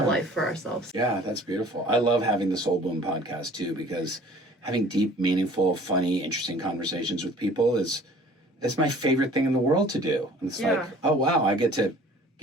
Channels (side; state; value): both; normal; correlation 0.50